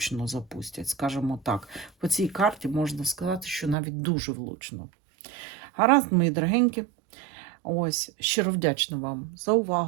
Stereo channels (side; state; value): left; drops out; at 3.8 s